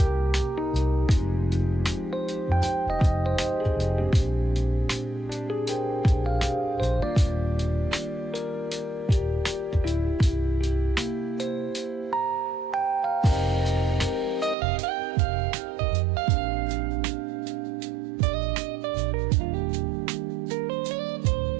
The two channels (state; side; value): drops out; left; at 14.6 s